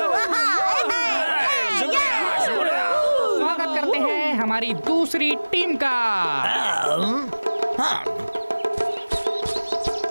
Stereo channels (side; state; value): both; inverted; correlation -1.00